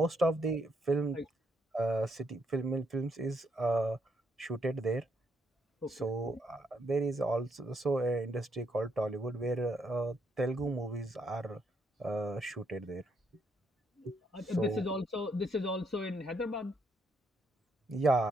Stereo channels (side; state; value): both; normal; correlation 0.75